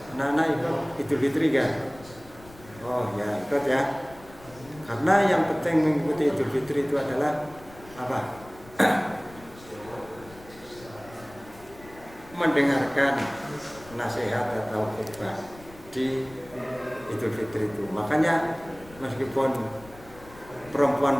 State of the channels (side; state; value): left; noise; rumble, 21 dB below the sound